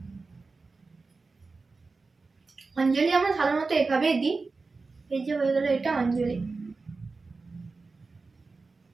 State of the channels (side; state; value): left; quieter; 4.0 dB